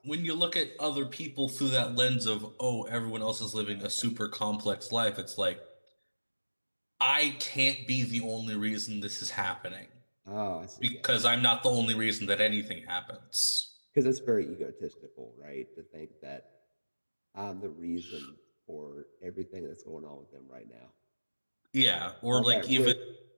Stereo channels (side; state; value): both; inverted; correlation -1.00